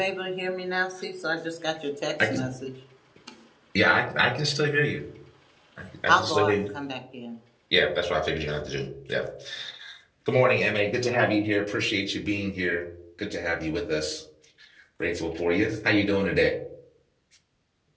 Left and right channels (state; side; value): identical; both; correlation 1.00